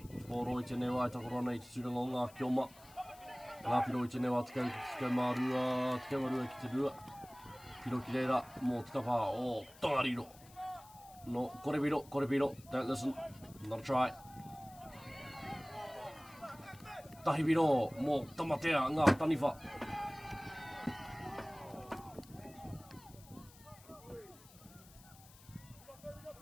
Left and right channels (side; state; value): left; noise; hiss, 22 dB below the sound